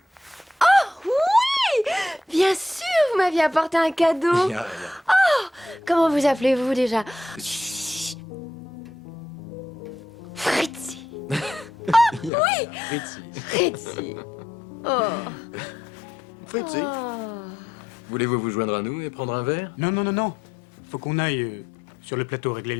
Oh, oui! Bien sûr, vous m'aviez apporté un cadeau. Oh, comment vous appelez-vous déjà? Fritzi. Oh, oui! Fritzi. Oh. Fritzi. Oh. Voulez-vous vous joindre à nous et prendre un verre? Non, non, non, non. Faut qu'on aille sur le plateau régler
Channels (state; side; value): drops out; right; at 12.3 s